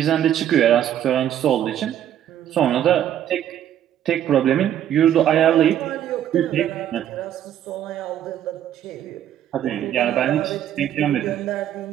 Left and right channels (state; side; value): quieter; left; 10.8 dB